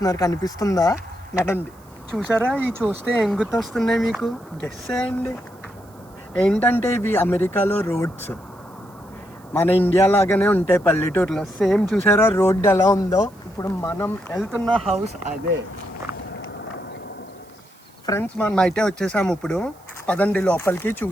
కనిపిస్తుందా? నడండి. చూసారా, ఈ చూస్తే ఏం గుర్తొస్తున్నాయి మీకు? గెస్ చేయండి. ఏంటంటే ఇవి అమెరికాలో రోడ్స్. మన ఇండియా లాగానే ఉంటాయి పల్లెటూరులో. సేమ్ చూసారా రోడ్ ఎలా ఉందో? ఇప్పుడు మనం వెళ్తున్న హౌస్ అదే. ఫ్రెండ్స్, మనం అయితే వచ్చేసాము. ఇప్పుడు పదండి లోపలికి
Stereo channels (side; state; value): right; noise; hiss, 29 dB below the sound